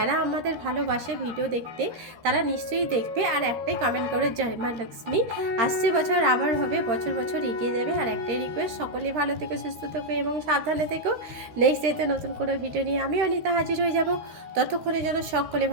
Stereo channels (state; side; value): late; left; 13 ms